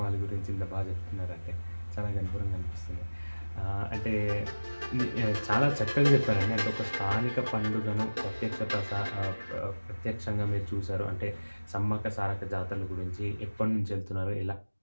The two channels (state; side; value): inverted; both; correlation -1.00